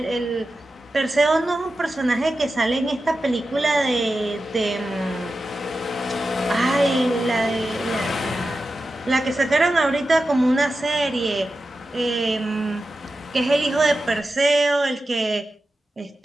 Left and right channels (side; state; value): both; normal; correlation 0.92